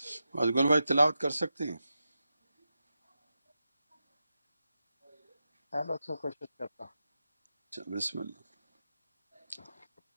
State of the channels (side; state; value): both; inverted; correlation -0.90